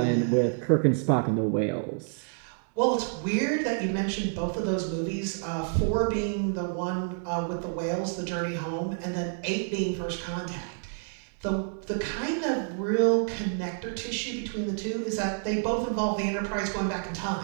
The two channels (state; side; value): silent; left; 59 dB below the other